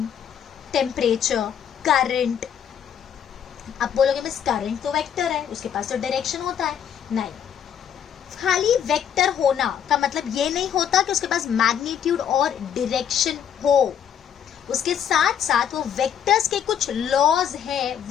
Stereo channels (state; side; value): quieter; right; 8.8 dB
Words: टेम्परेचर, करंट. आप बोलोगे मिस करंट तो वेक्टर है, उसके पास तो डायरेक्शन होता है. नहीं, खाली वेक्टर होना का मतलब ये नहीं होता कि उसके पास मैग्नीट्यूड और डायरेक्शन हो. उसके साथ साथ वो वेक्टर्स के कुछ लॉज हैं